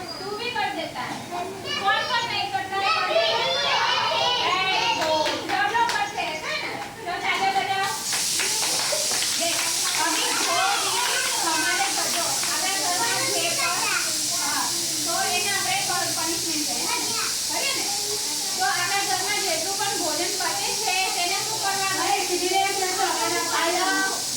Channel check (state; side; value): identical; both; correlation 1.00